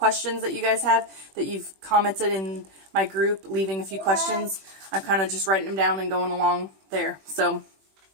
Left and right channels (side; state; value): left; late; 21 ms